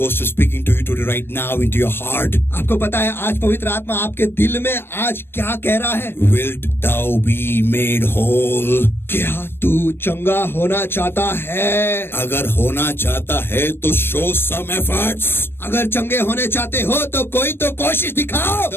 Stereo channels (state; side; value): late; right; 0.11 ms